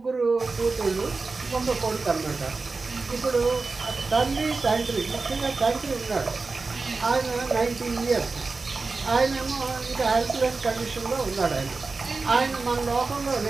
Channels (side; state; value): left; quieter; 4.0 dB